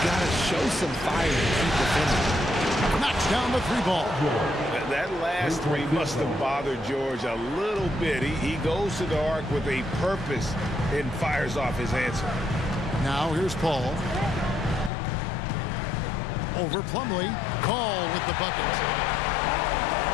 gotta show some fire and keep defending. Knocks down the 3 ball. That last 3 must have bothered George a little bit. He goes to the arc with a purpose and fires off his answer. Now here's Paul. Over Plumlee. Call with the bucket.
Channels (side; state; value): right; drops out; at 14.9 s